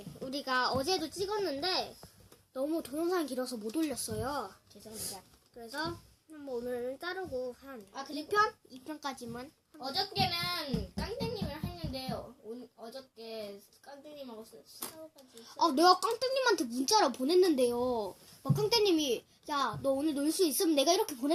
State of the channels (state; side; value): identical; both; correlation 1.00